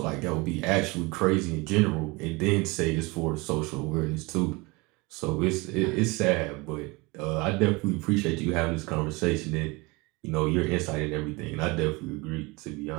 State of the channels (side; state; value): left; quieter; 25.3 dB